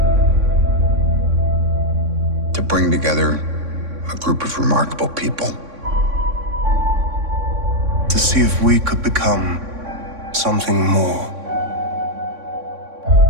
to bring together a group of remarkable people. To see if we could become something more.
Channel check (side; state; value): left; late; 3.6 ms